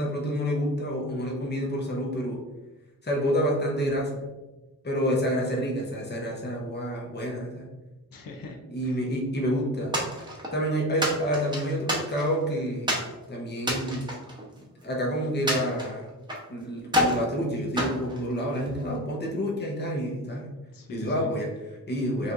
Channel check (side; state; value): both; normal; correlation 0.28